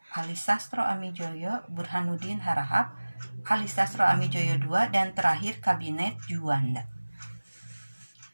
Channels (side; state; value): both; inverted; correlation -1.00